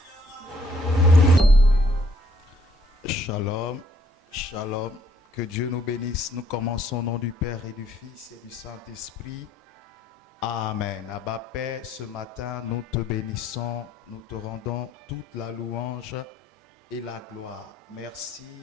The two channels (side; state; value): both; normal; correlation 0.65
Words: Shalom, shalom, que Dieu nous bénisse. Nous commençons au nom du Père et du Fils et du Saint-Esprit. Amen. Abba Père, ce matin, nous te bénissons, nous te rendons toute la louange et la gloire. Merci